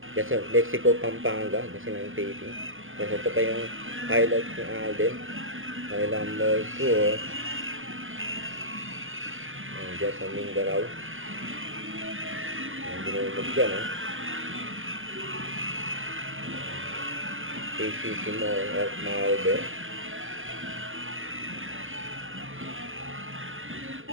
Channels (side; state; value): left; late; 0.58 ms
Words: Yan sa Mexico, Pampanga, kasi ng taping. Tapos ito pa yung highlight ni Alden. Kailang mall tour. Diyan sa Mindanao. Ang binulog dyan, ha? KCC Mall of Malbe.